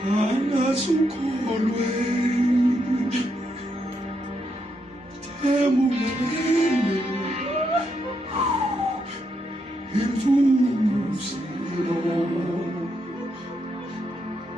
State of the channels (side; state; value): both; normal; correlation 0.80